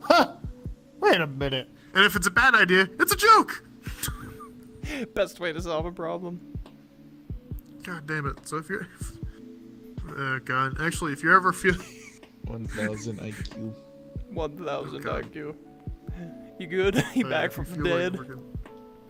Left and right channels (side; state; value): both; identical; correlation 1.00